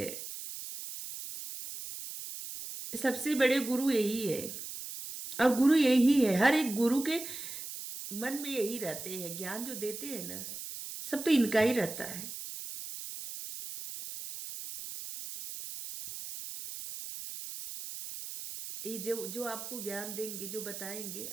सबसे बड़े गुरु यही है, और गुरु यही है। हर एक गुरु के मन में यही रहते हैं, ज्ञान जो देते हैं ना, सब तो इनका ही रहता है। ये जो जो आपको ज्ञान देंगे, जो बताएंगे,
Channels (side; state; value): right; noise; hiss, 9 dB below the sound